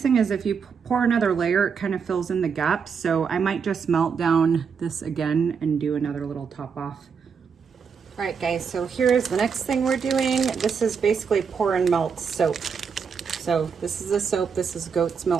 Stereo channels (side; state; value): left; quieter; 6.2 dB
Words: thing is if you pour another layer, it kind of fills in the gaps. So I might just melt down this again and do another little top off. All right, guys, so here's the next thing we're doing. This is basically pour and melt soap. So this is a soap. This is goat's